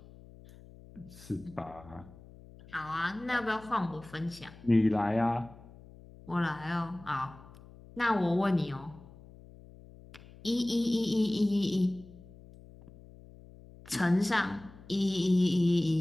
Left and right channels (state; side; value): noise; left; hum, 20 dB below the sound